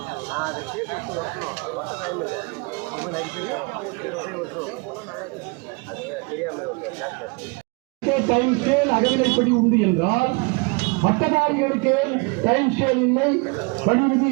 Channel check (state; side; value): quieter; left; 30.2 dB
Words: டைம் ஸ்கேல் அகவிலைப்படி உண்டு என்றால் பட்டதாரிகளுக்கு டைம் ஸ்கேல் இல்லை, பணி